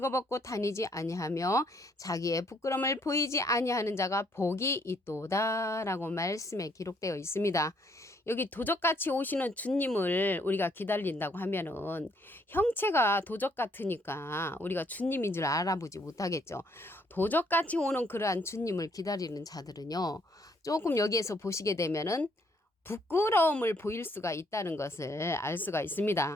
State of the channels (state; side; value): normal; both; correlation 0.68